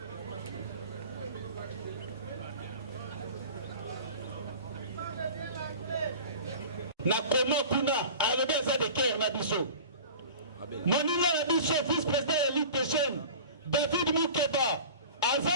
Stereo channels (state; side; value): inverted; both; correlation -0.39